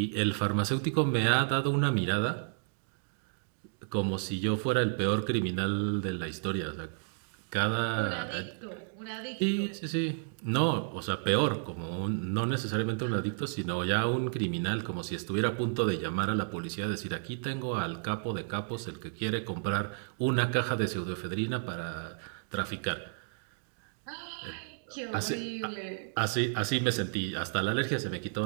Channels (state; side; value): silent; left; digital silence